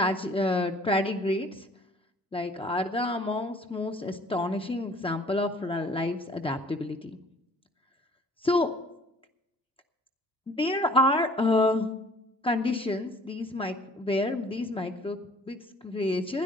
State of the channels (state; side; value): normal; both; correlation 0.54